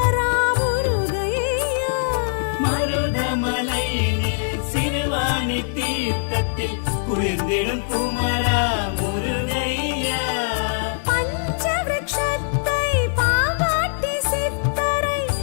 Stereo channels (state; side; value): silent; right; digital silence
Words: முருகையா. மருதமலையினில் சிறுவாணி தீர்த்தத்தில் குளிர்ந்திடும் குமரா முருகையா. பஞ்சவிருட்சத்தை பாவாட்டி சித்தரை